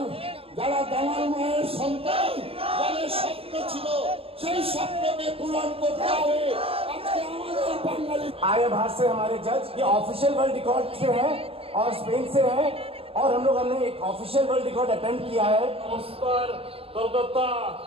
যারা দামাল মায়ের সন্তান, যাদের স্বপ্ন ছিল সেই স্বপ্নকে পূরণ করতে হবে। আজকে আমাদের বাঙালি आर्य भारत से हमारे जज ये ऑफिशियल वर्ल्ड रिकॉर्ड से है और स्पेन से है, और हमने एक ऑफिशियल वर्ल्ड रिकॉर्ड अटेम्प्ट किया है। नमस्कार Kolkata,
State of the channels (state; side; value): late; left; 0.28 ms